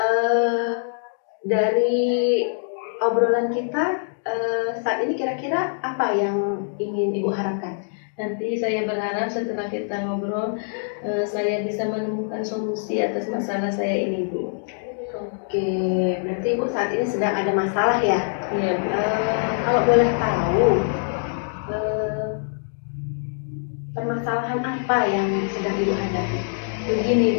Dari obrolan kita saat ini kira-kira apa yang ingin Ibu harapkan? Nanti saya berharap setelah kita ngobrol, saya bisa menemukan solusi atas masalah saya ini Bu. Oke, berarti Ibu saat ini sedang ada masalah ya? Iya Bu. Kalau boleh tahu, permasalahan apa yang sedang Ibu hadapi? Begini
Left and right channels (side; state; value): right; silent; digital silence